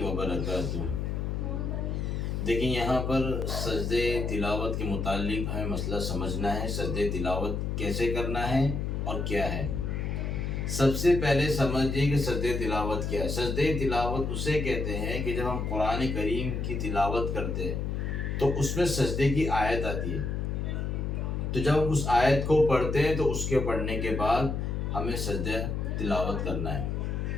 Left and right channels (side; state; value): left; noise; hum, 2 dB below the sound